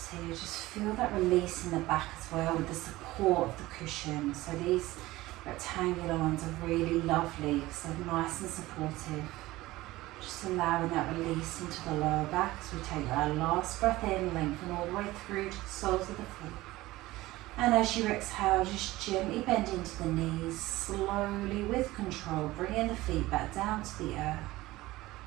here. Just feel that release in the back as well with the support of the cushion. So these rectangular ones are really lovely because they're nice and supportive. Just allowing that release into the lower back as we take our last breath in, lengthen all the way through to the soles of the feet. And as you exhale, just gently bend into the knees, slowly with control, bringing the feet back down to the earth.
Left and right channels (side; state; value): left; quieter; 18.2 dB